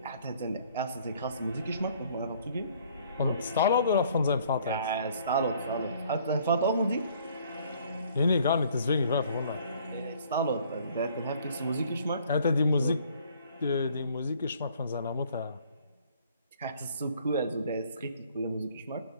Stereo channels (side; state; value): both; inverted; correlation -0.59